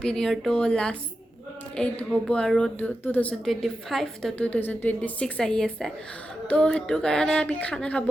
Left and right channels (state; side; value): normal; both; correlation 0.90